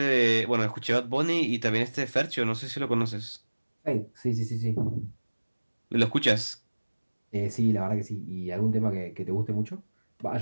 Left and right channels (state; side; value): inverted; both; correlation -1.00